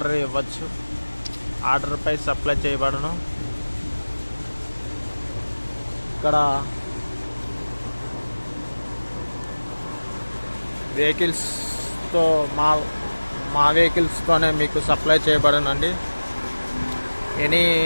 ఇవ్వచ్చు. ఆర్డర్పై సప్లై చేయబడను. ఇక్కడ వెహికల్స్తో మా వెహికల్స్తోనే మీకు సప్లై చేయబడనండి.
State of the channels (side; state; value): both; inverted; correlation -1.00